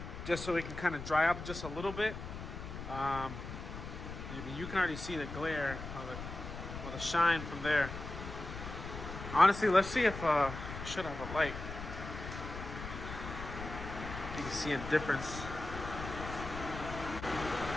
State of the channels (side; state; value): left; noise; rumble, 9 dB below the sound